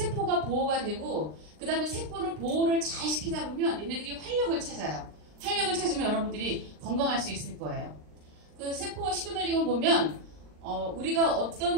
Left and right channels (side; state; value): left; late; 39 ms